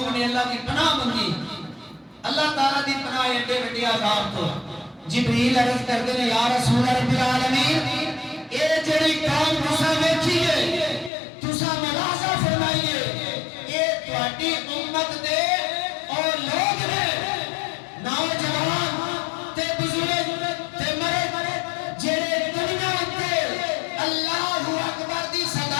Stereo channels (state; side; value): drops out; right; at 11.1 s